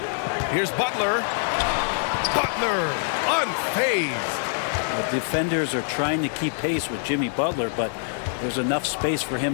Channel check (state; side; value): silent; right; digital silence